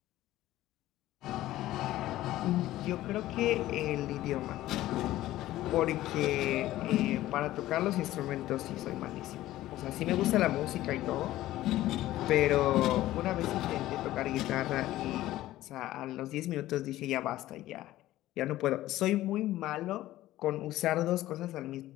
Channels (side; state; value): right; quieter; 15.2 dB